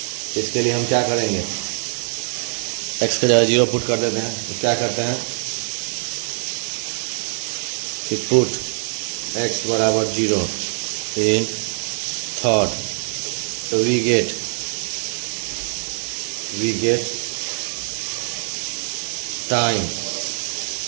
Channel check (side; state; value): left; silent; 60 dB below the other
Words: इसके लिए हम क्या करेंगे एक्स का जगह 0 पुट कर देते हैं। तो क्या करते हैं कि पुट एक्स बराबर 0 इन थर्ड, तो we get time